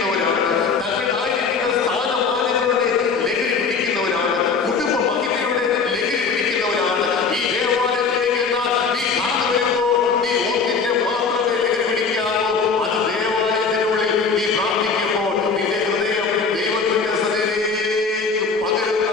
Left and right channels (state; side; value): quieter; right; 5.1 dB